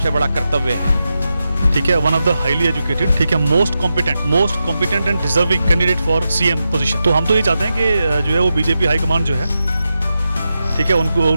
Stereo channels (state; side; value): inverted; both; correlation -0.89